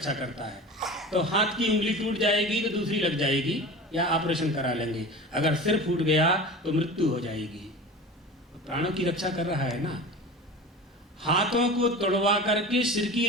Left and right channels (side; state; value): both; normal; correlation 0.33